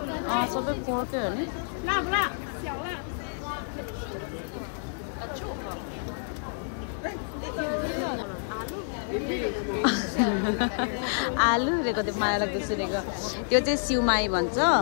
सबै पोर्कै हो नि. आलु रेको त्यो माया लाग्दो सुनेको. त्यो चाहिँ सिउमाई भन्छ.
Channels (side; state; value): right; silent; digital silence